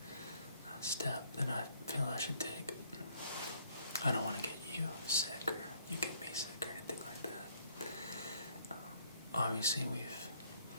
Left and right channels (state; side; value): inverted; both; correlation -0.64